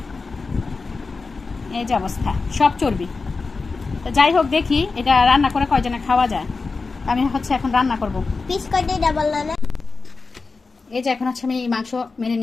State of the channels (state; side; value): quieter; right; 4.2 dB